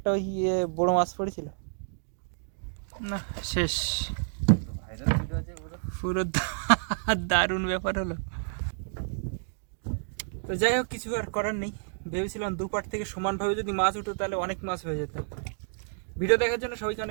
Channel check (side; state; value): left; silent; digital silence